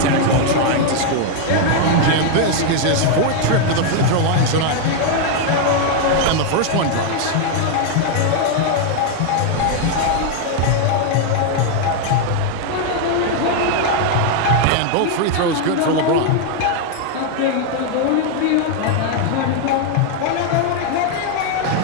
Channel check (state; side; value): different; both; correlation 0.00